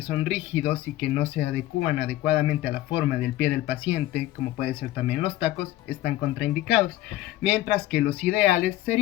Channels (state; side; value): quieter; right; 15.3 dB